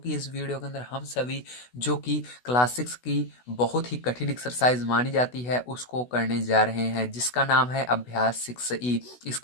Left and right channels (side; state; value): right; late; 16 ms